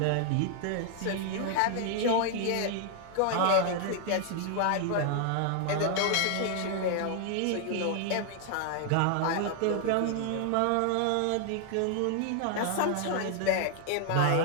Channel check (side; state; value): both; different; correlation 0.00